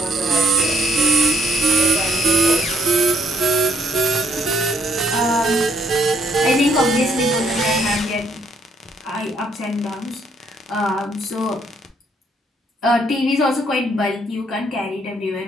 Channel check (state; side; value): normal; both; correlation 0.70